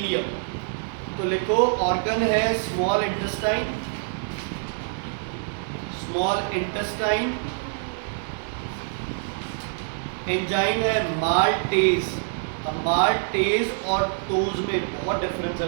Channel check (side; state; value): left; silent; digital silence